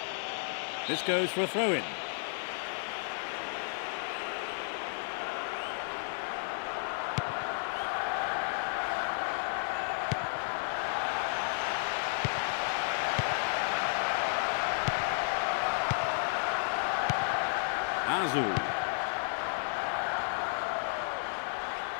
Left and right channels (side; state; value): right; silent; 56 dB below the other